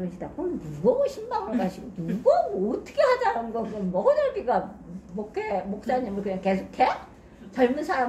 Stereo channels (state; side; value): identical; both; correlation 1.00